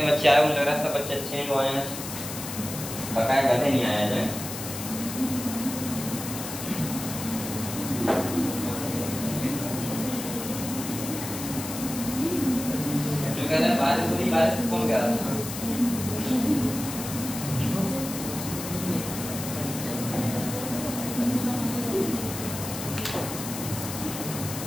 बच्चे आए मुझे लग रहा है सब बच्चे अच्छे हैं जो आए हैं, बकाया गधे नहीं आया जाए। जो कह रहा है बारिश हो रही, बारिश कौन कह रहा था,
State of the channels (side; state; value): left; noise; hiss, 8 dB below the sound